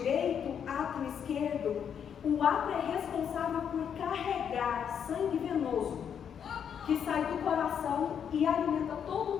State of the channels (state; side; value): quieter; right; 8.0 dB